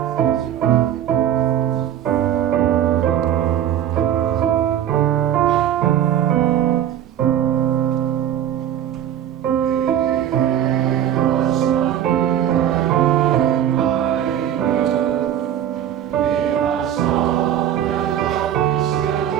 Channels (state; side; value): quieter; left; 10.7 dB